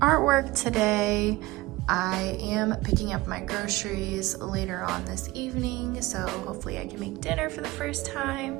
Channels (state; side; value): quieter; left; 19.8 dB